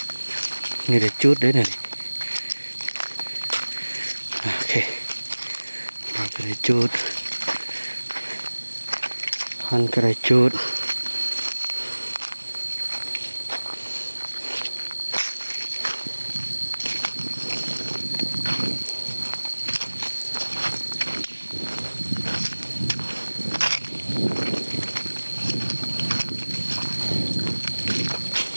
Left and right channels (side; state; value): both; inverted; correlation -1.00